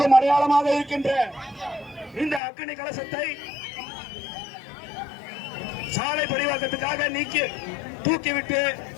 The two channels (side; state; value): right; drops out; at 2.4 s